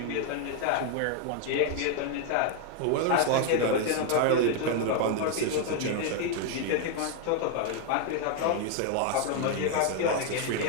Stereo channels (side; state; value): both; different; correlation 0.00